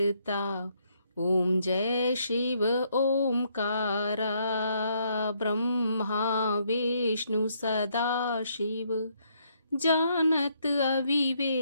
ओम जय शिव ओमकारा ब्रह्मा विष्णु सदा शिव जानत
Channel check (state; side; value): inverted; both; correlation -0.72